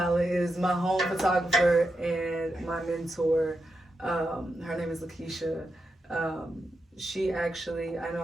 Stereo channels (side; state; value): both; normal; correlation 0.86